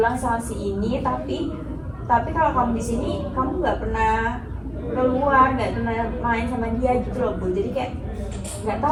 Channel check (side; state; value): both; identical; correlation 1.00